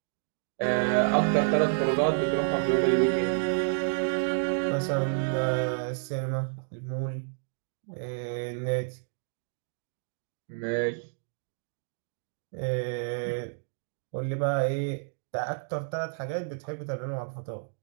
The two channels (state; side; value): silent; left; digital silence